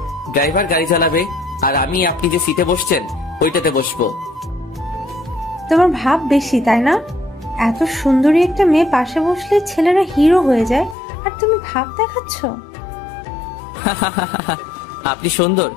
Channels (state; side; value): drops out; right; at 11.0 s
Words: ড্রাইভার গাড়ি চালাবে, আর আমি আপনি যে সিটে বসছেন ওইটাতে বসবো। তোমার ভাব বেশি, তাই না? এত সুন্দরী একটা মেয়ে পাশে বসলে ছেলেরা হিরো হয়ে যায়, আর তুমি ভাব দেখাচ্ছ। আপনি সুন্দর?